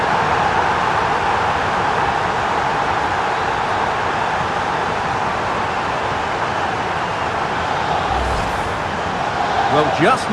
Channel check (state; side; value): identical; both; correlation 1.00